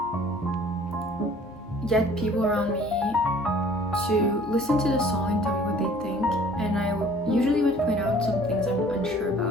get people around me to listen to the song and tell me what they think, and I usually would point out some things I'm unsure about.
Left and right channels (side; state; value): both; normal; correlation 0.52